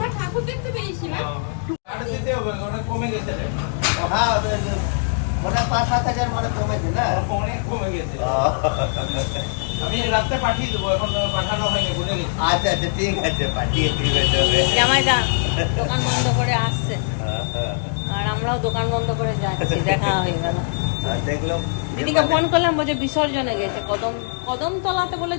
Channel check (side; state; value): right; silent; digital silence